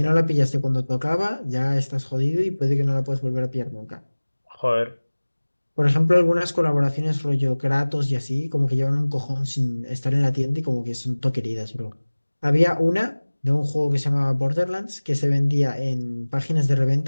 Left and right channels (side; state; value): both; inverted; correlation -1.00